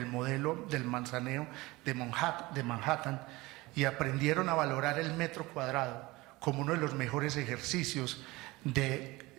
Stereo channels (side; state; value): left; quieter; 21.3 dB